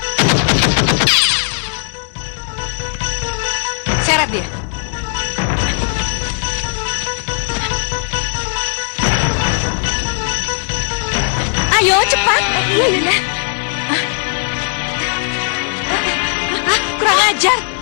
Seret dia. Ayo, cepat. Iya, Yunda. Kurang ajar.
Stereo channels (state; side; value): silent; right; 60 dB below the other